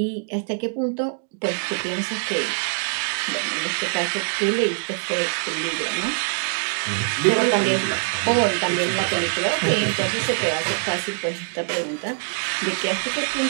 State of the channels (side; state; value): left; silent; digital silence